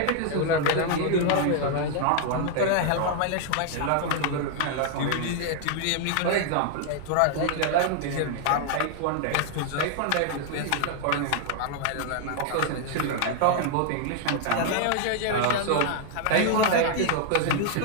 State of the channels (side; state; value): both; different; correlation 0.00